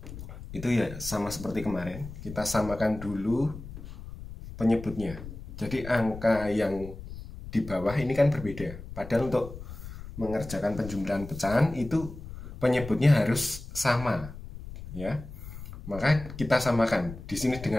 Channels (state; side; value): noise; left; rumble, 12 dB below the sound